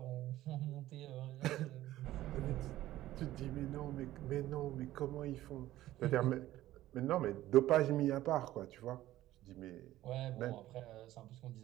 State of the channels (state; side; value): quieter; left; 14.9 dB